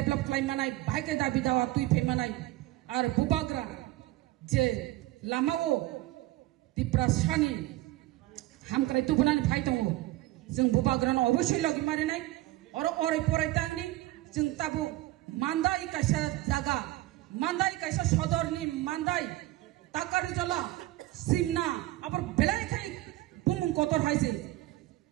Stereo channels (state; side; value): quieter; left; 17.7 dB